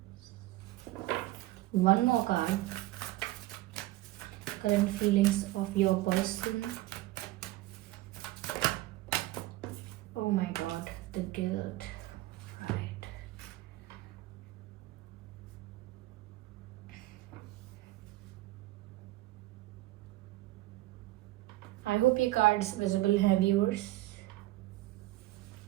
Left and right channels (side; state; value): left; quieter; 17.6 dB